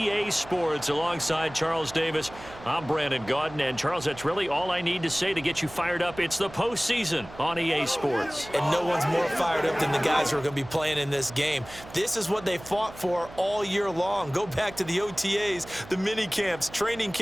Sports. Alongside Charles Davis, I'm Brandon Gaudin. And, Charles, that's really all I need to say to get you fired up. It's the postseason on EA Sports. And no one's more fired up than the guys who are going to be playing in this game. This is what they fought for all year long. Go back to the OTAs, the mini camps, training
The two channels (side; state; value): right; noise; hum, 17 dB below the sound